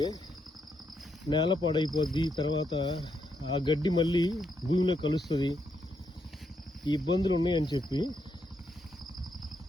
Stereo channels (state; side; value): normal; both; correlation 0.79